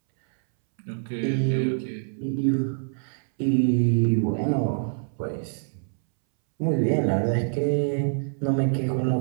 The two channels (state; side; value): silent; left; 62 dB below the other